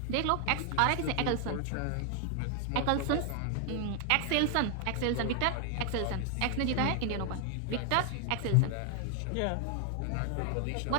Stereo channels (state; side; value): different; both; correlation 0.00